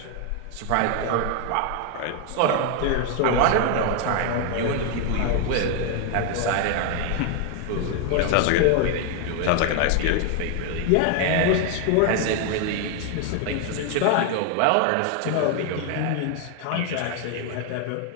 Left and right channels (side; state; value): both; different; correlation 0.00